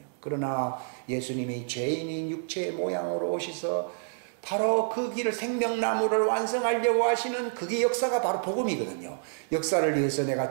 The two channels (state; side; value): silent; left; digital silence